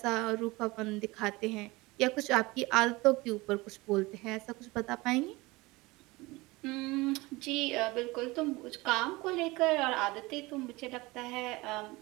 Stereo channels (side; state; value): left; quieter; 22.2 dB